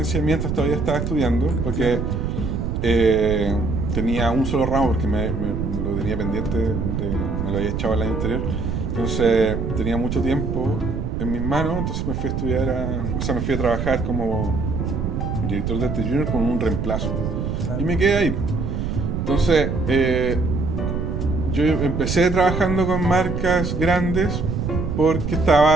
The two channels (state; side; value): noise; right; rumble, 2 dB below the sound